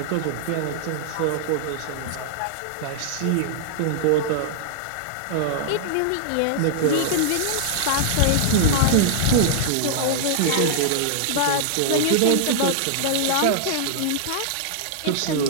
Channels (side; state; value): both; different; correlation -0.01